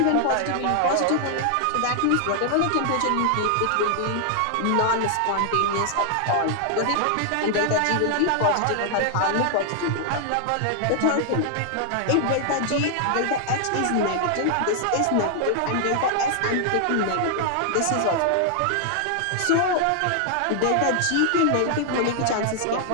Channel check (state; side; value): different; both; correlation 0.00